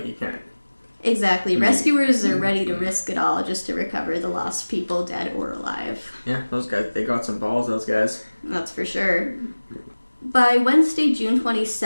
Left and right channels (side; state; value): both; inverted; correlation -1.00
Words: you can't... Exactly. Rescuers are ready to risk it all just to recover the lost people, dead or alive. Yeah, those guys, they got some balls, those guys. That's for sure. By Wednesday, June